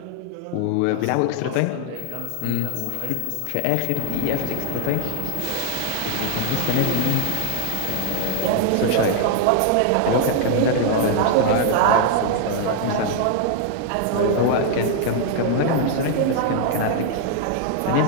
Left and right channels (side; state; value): both; different; correlation 0.00